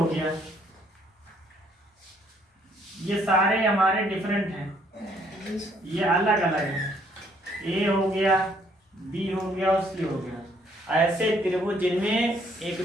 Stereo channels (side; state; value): both; normal; correlation 0.66